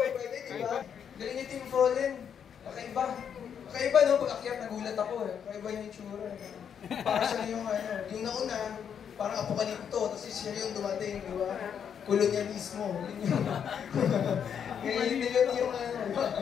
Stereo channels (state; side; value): quieter; right; 7.9 dB